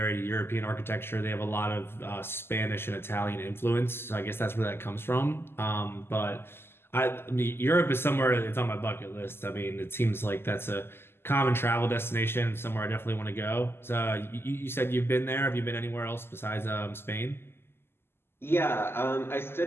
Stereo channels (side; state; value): right; late; 0.12 ms